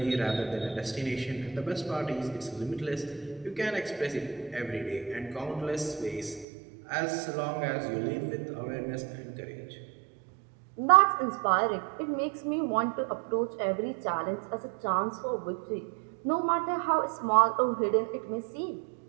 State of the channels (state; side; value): drops out; left; at 6.5 s